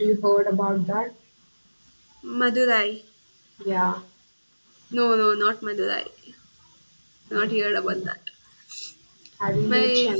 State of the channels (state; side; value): inverted; both; correlation -1.00